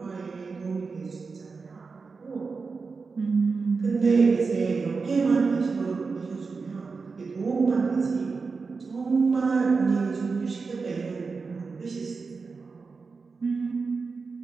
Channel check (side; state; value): left; quieter; 4.6 dB